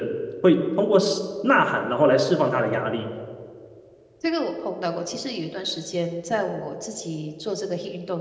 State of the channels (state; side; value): identical; both; correlation 1.00